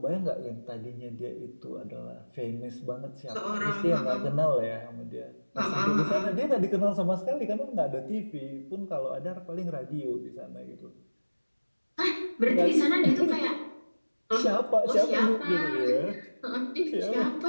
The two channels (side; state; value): both; inverted; correlation -1.00